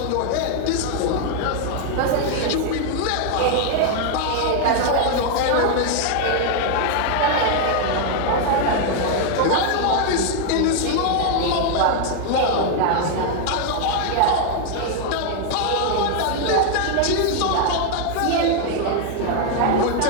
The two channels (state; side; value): different; both; correlation 0.00